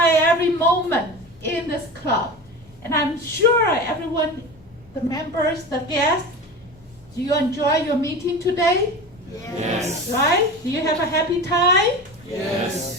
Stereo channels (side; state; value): left; noise; rumble, 27 dB below the sound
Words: moment in this club. And I'm sure everyone, the members, the guests, do you enjoy your meeting today? Yes. Right? Do you have a happy time?